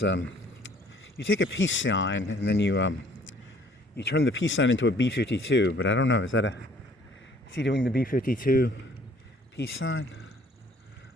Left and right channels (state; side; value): normal; both; correlation 0.58